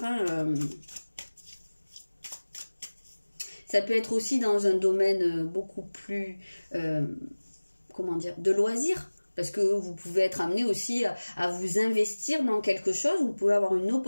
hein. Ça peut être aussi dans un domaine beaucoup plus, comment dire, de loisirs. Parce que vous pouvez être amené aussi à vous investir dans quelque chose. Vous pouvez avoir une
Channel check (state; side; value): inverted; both; correlation -1.00